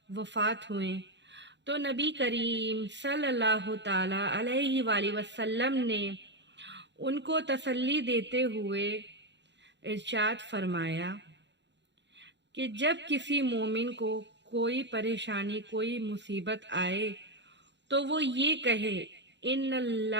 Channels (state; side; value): late; left; 0.52 ms